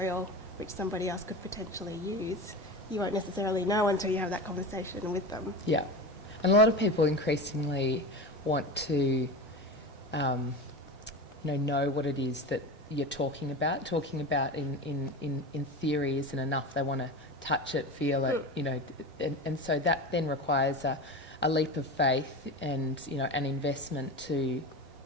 which somebody else could potentially use, you won't necessarily know until you have that conversation with them. Yeah. And a lot of people increasingly want to know what it is that you're talking about. Talking about in theory isn't enough. They want to touch it, feel it, you know, and so that then requires a leap of faith and, you know, an investment to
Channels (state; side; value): normal; both; correlation 0.27